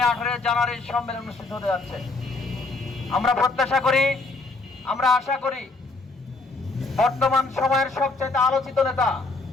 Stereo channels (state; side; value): quieter; right; 3.4 dB